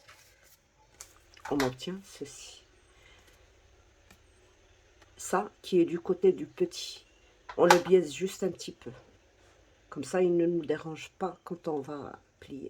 On obtient ceci. Ça qui est du côté du petit. On le biaise juste un petit peu. Comme ça, il ne nous dérange pas quand on va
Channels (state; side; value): identical; both; correlation 1.00